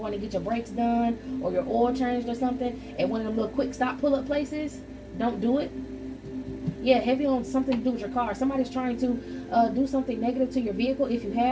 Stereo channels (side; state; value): both; identical; correlation 1.00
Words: to get your brakes done or your oil changed or something at one of them little quick stop pull-up places. Don't do it. Yeah, heavy on something to do with your car. Somebody's trying to do something negative to your vehicle if you